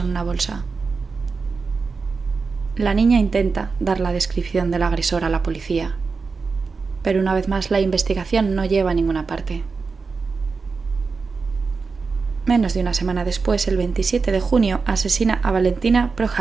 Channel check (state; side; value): quieter; left; 4.7 dB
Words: una bolsa. La niña intenta dar la descripción del agresor a la policía, pero una vez más la investigación no lleva a ninguna parte. Menos de una semana después, el 27 de junio, asesina a Valentina